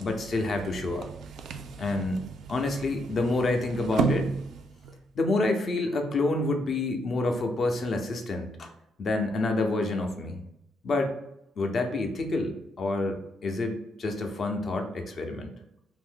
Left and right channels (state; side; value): normal; both; correlation 0.76